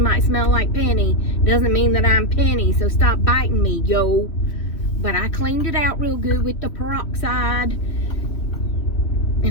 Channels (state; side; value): late; right; 3.0 ms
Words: might smell like Penny doesn't mean that I'm Penny, so stop biting me, yo. But I cleaned it out real good with the peroxide,